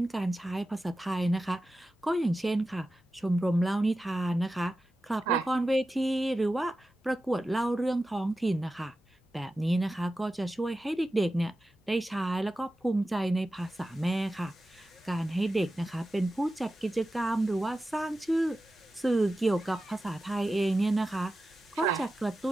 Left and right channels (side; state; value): both; normal; correlation 0.93